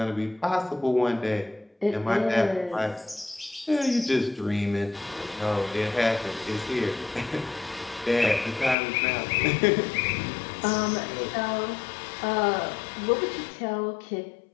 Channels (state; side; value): drops out; right; at 8.8 s